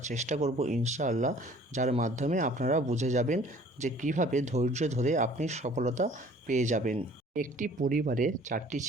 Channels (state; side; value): normal; both; correlation 0.52